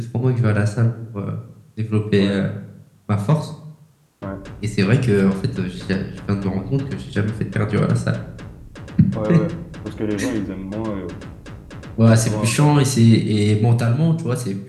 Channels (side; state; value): both; identical; correlation 1.00